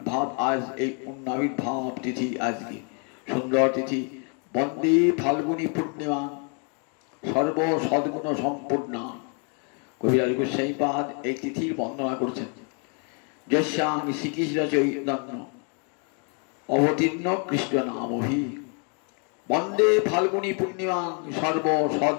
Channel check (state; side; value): quieter; right; 39.5 dB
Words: আজ এই আবির্ভাব তিথি, আজকে সুন্দর তিথি। বন্দে ফাল্গুনী পূর্ণিমা সর্ব সদ্গুণ সম্পূর্ণা। কবিরাজ গোস্বাইপাদ এই তিথির বন্দনা করছেন। যস্যাং শ্রীকৃষ্ণ চৈতন্য অবতীর্ণ কৃষ্ণ নামভি বন্দে ফাল্গুনী পূর্ণিমা সর্ব